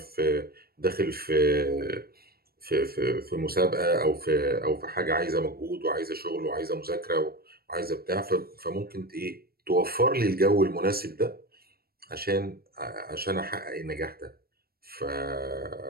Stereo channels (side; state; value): left; late; 0.44 ms